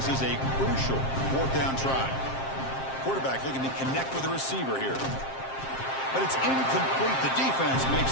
is a crucial 4th down try. Quarterback looking to connect with the receiver here. But it's incomplete. The defense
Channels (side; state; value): right; late; 7.5 ms